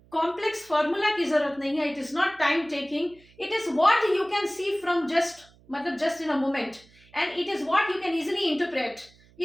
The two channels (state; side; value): noise; right; hum, 28 dB below the sound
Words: कॉम्प्लेक्स फॉर्मूला की जरूरत नहीं है, it is not time taking, it is what you can see from just मतलब just in a moment, and it is what you can easily interpret.